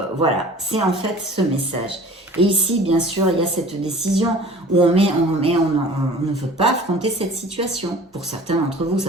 voilà, c'est en fait ce message. Et ici, bien sûr, il y a cette décision où on ne veut pas affronter cette situation. Pour certains d'entre vous,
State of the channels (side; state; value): both; normal; correlation 0.45